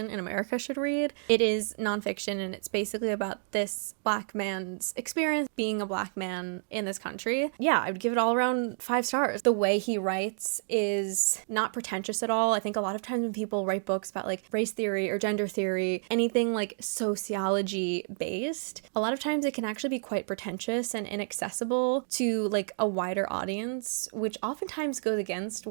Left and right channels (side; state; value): left; silent; digital silence